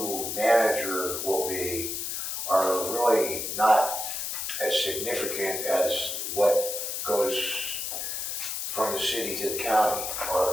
manager will be, are really not as significant as what goes from the city to the county,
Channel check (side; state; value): left; noise; hiss, 3 dB below the sound